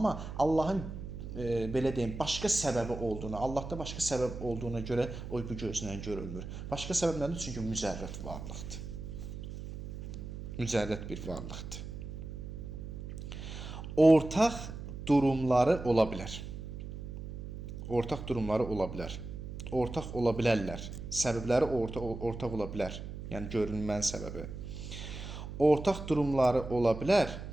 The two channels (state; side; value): noise; right; hum, 9 dB below the sound